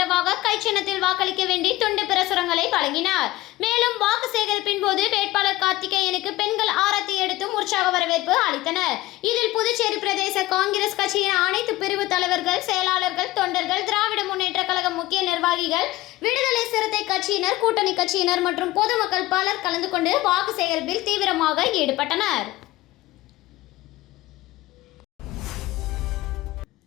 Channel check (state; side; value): quieter; right; 17.9 dB